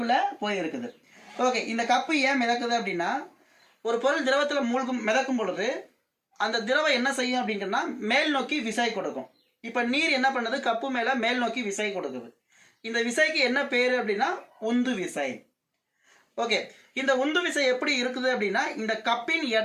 போயிருக்குது. ஓகே, இந்த கப்பு ஏன் மிதக்குது அப்படின்னா, ஒரு பொருள் திரவத்துல மிதக்கும் பொழுது அந்த திரவம் என்ன செய்யும் அப்படின்னா மேல் நோக்கி விசை கொடுக்கும். இப்ப நீர் என்ன பண்ணுது? கப்பு மேல மேல் நோக்கி விசை கொடுக்குது. இந்த விசைக்கு என்ன பேரு அப்படின்னா உந்து விசை. ஓகே, இந்த உந்து விசை எப்படி இருக்குது அப்படின்னா, இந்த கப்பின்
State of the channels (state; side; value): identical; both; correlation 1.00